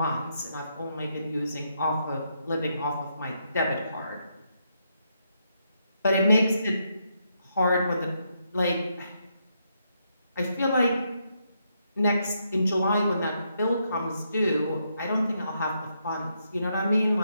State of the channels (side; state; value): both; inverted; correlation -0.79